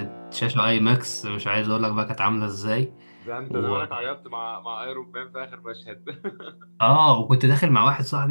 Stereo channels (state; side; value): inverted; both; correlation -1.00